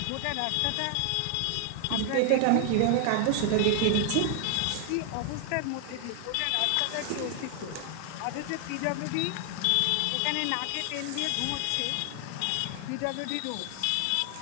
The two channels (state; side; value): different; both; correlation 0.00